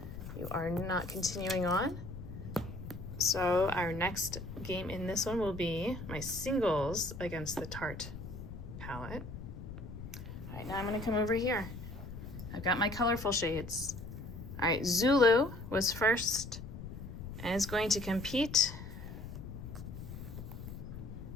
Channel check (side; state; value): left; noise; rumble, 10 dB below the sound